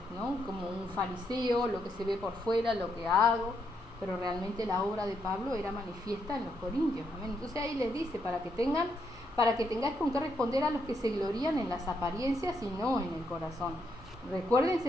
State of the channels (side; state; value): both; normal; correlation 0.77